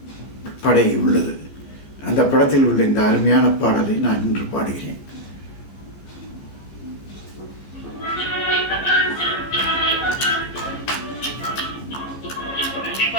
படை உள்ளது. அந்த படத்தில் உள்ள இந்த அருமையான பாடலை நான் இன்று பாடுகிறேன்.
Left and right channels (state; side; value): late; right; 15 ms